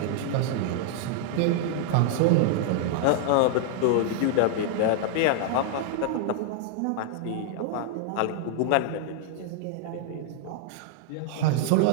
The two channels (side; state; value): both; different; correlation -0.01